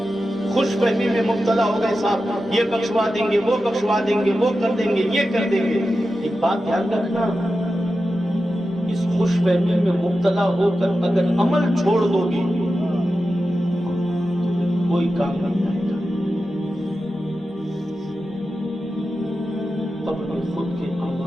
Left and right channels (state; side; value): normal; both; correlation 0.91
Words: خوش فہمی میں مبتلا ہو گئے، صاحب یہ بخشوا دیں گے، وہ بخشوا دیں گے، وہ کر دیں گے، یہ کر دیں گے۔ ایک بات دھیان رکھنا، اس خوش فہمی میں مبتلا ہو کر اگر عمل چھوڑ دو گے کوئی کام نہیں آئے گا۔ قبر میں خود کے